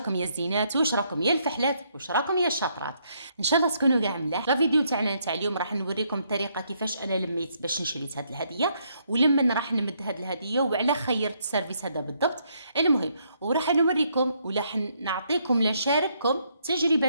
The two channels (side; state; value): both; inverted; correlation -0.73